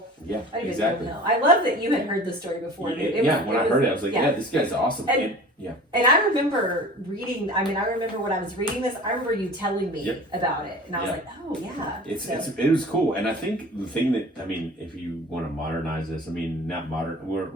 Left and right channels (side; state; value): both; normal; correlation 0.41